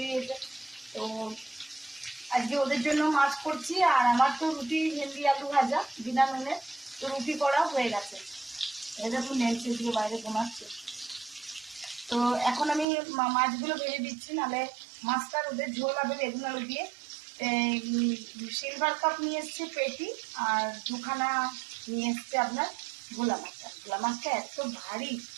দিয়েছে। তো আজকে ওদের জন্য মাছ করছি, আর আমার তো রুটি ভেন্ডি আলু ভাজা বিনা নুনে, তো রুটি করা হয়ে গেছে। দেখুন নেলছে দিয়ে বাইরে ঘুমাচ্ছে। তো এখন আমি মাছগুলো ভেজে দিচ্ছি, নাহলে মাছটার ওদের ঝোল হবে বেগুন আলু দিয়ে। সিলভার কাপ নিয়ে এসছে পেটি, আর দুখানা নিয়ে এসছে আপনার ভোলা মাছটা। ভোলা মাছটা এত ভারী,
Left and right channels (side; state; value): left; drops out; at 12.9 s